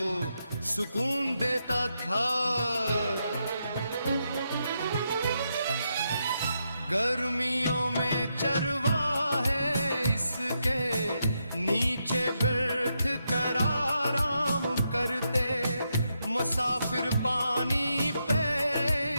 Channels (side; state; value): both; inverted; correlation -0.82